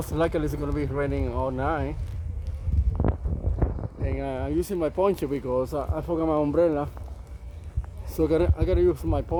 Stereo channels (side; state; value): both; identical; correlation 1.00